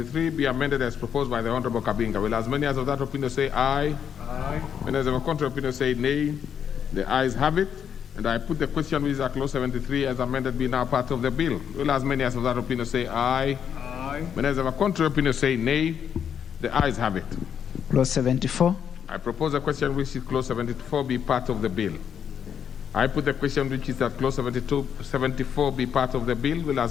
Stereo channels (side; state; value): right; quieter; 8.2 dB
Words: be amended as proposed by the Honorable Kabinga. Will as many as of that opinion say aye? Aye. When as of a contrary opinion say nay. The ayes have it. And I put the question which is at clause 73 as amended be now part of the bill. Will as many as of that opinion say aye? Aye. When as of a contrary opinion say nay. The ayes have it. Clause 74. I propose a question which is clause 74 be part of the bill. I put the question which is that clause 74 be part of the bill. Will